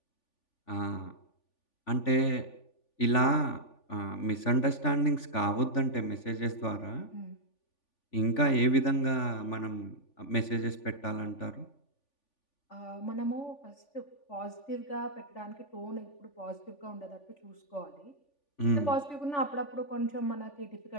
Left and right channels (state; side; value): late; right; 3.5 ms